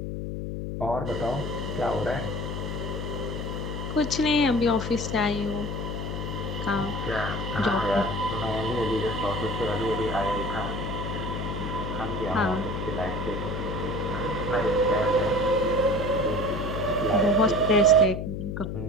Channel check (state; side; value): noise; left; hum, 4 dB below the sound